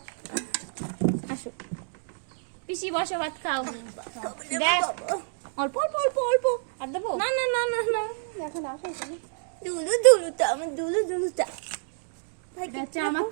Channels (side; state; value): left; silent; digital silence